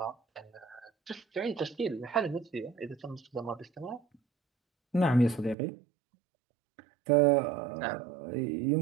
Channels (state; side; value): drops out; left; at 5.6 s